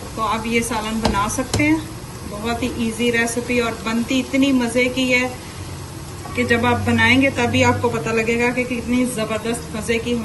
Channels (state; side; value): identical; both; correlation 1.00